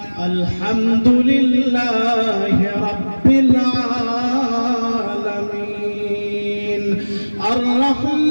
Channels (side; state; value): both; inverted; correlation -1.00